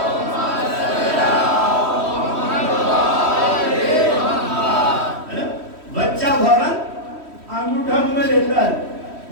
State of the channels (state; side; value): late; left; 3.1 ms